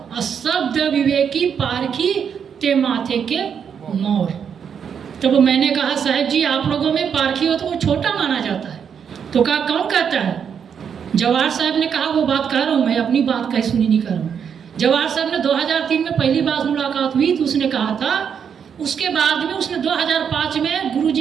और शब्द विवेकी पारखी ते माथे के मोर। तब मैंने कहा साहब जी आप लोगों में पारखी हो तो वो छोटा माना जाता है। तो कहा कौन कहता है? जवाहर साहब ने कहा वो बात कह रहा हूँ मैं, अपनी बात कहीं सुनी नहीं कर रहा हूँ। जवाहर साहब ने 2003 में पहली बार मुलाकात हुई तो उसने कहा था, उसके बाद में उसने 2005 में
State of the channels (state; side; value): quieter; left; 7.4 dB